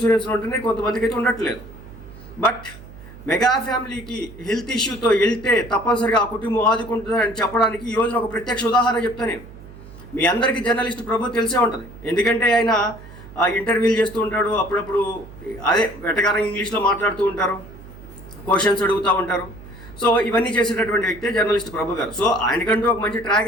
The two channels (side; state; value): right; noise; hum, 17 dB below the sound